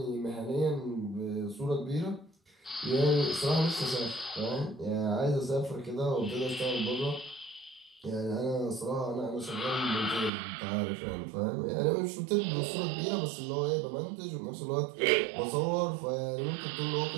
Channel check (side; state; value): left; drops out; at 10.3 s